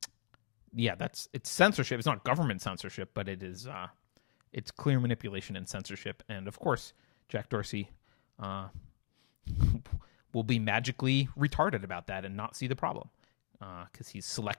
it's censorship. It's not government censorship, but it is it's clear manipulation and censorship. And of course, Jack Dorsey will be magically retarded about that and not see the problem because he's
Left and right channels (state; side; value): silent; right; digital silence